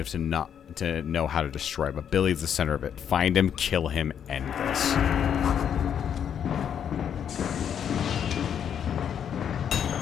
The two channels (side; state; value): right; quieter; 8.5 dB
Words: enough to know how to destroy it. But Billy's the center of it. Find him, kill him, end this.